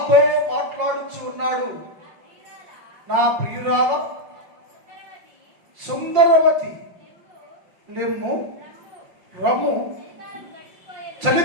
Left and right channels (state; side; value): late; left; 5.7 ms